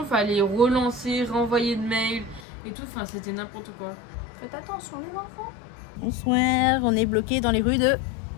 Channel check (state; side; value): drops out; right; at 2.5 s